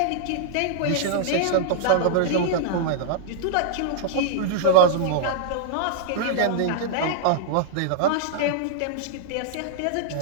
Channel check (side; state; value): both; different; correlation -0.02